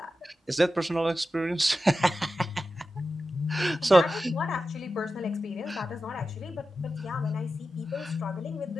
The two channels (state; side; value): normal; both; correlation 0.92